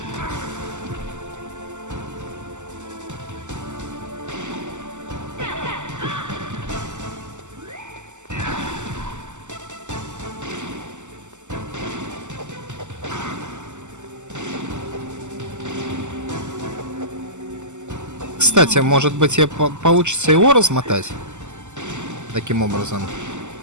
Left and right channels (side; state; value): left; late; 0.84 ms